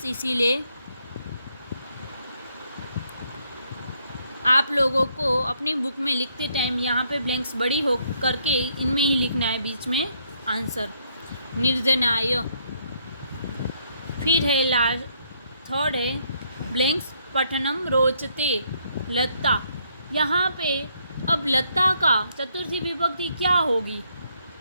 इसीलिए आप लोगों को अपनी बुक में लिखते टाइम यहाँ पे ब्लैंक्स बड़ी हो करके इनमें ही लिखना है बीच में आंसर। निर्धनाय। फिर है लास्ट थर्ड है ब्लैंक्स पठनम रोचते लता। यहाँ पे अब लता का चतुर्थी विभक्ति क्या होगी?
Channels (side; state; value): both; inverted; correlation -0.71